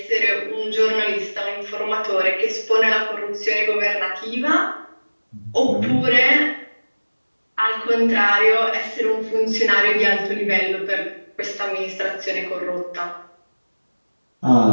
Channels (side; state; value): both; inverted; correlation -1.00